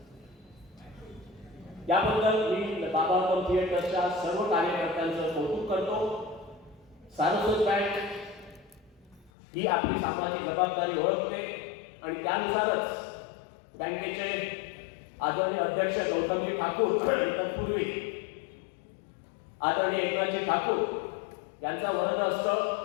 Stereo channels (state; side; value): drops out; right; at 9.3 s